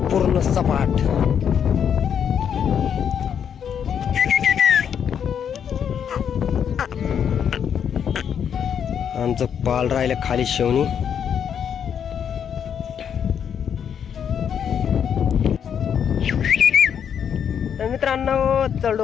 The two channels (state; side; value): quieter; right; 8.1 dB